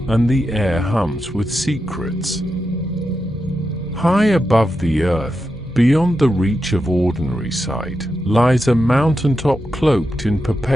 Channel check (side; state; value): both; normal; correlation 0.88